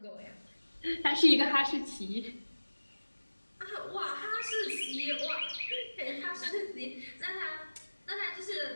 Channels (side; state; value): both; inverted; correlation -1.00